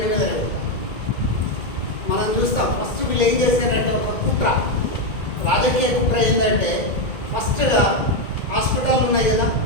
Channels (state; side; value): late; right; 1.9 ms